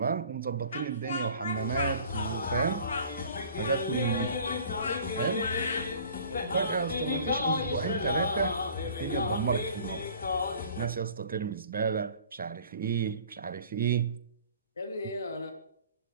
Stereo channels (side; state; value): both; inverted; correlation -0.49